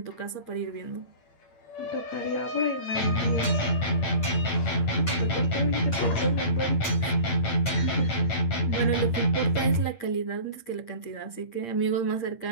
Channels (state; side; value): late; right; 8.7 ms